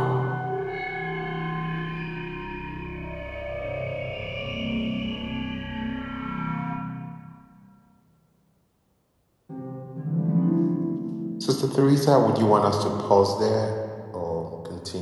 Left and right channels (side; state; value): both; identical; correlation 1.00